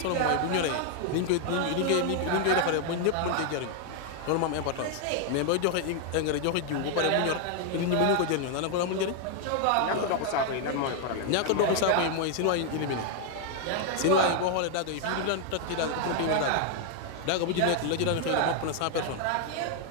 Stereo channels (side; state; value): both; different; correlation 0.00